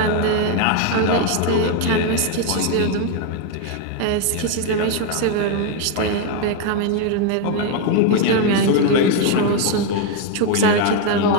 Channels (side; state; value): both; different; correlation 0.01